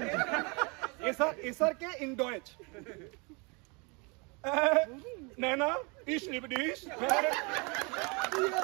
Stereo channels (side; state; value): left; quieter; 30.7 dB